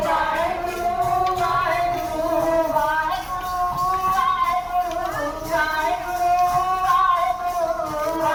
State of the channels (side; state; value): both; identical; correlation 1.00